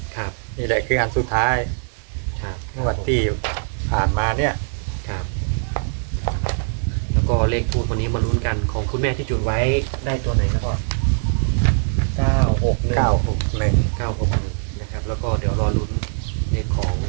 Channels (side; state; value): left; silent; digital silence